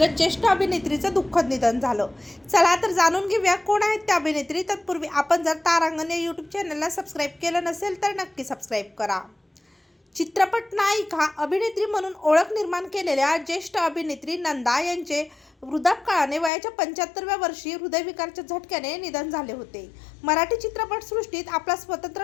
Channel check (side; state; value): right; drops out; at 16.5 s